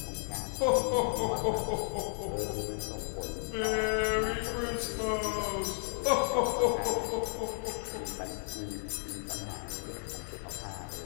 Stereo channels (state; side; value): silent; right; digital silence